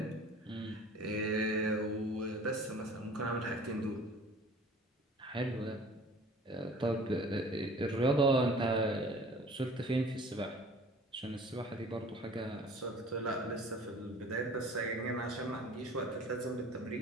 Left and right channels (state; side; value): normal; both; correlation 0.46